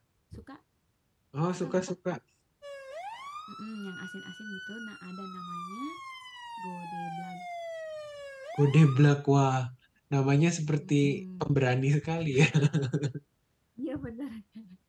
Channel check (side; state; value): both; identical; correlation 1.00